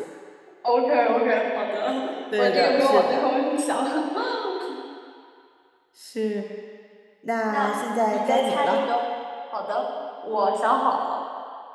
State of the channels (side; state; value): both; identical; correlation 1.00